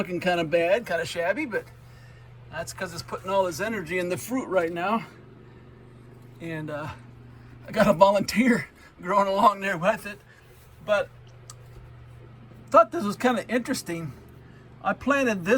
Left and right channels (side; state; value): both; identical; correlation 1.00